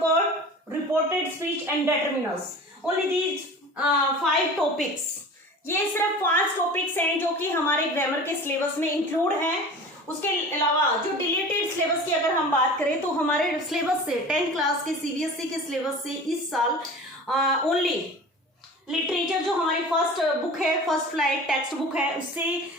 reported speech and determiners. Only these 5 topics. ये सिर्फ 5 टॉपिक्स हैं जो कि हमारे ग्रामर के सिलेबस में इंक्लूड हैं। उसके अलावा जो डिलीटेड सिलेबस की अगर हम बात करें तो हमारे सिलेबस से 10th क्लास के सीबीएसई के सिलेबस से इस साल ओनली लिटरेचर जो हमारी फर्स्ट बुक है, फर्स्ट फ्लाइट टेक्स्ट बुक है, उससे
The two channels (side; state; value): both; normal; correlation 0.38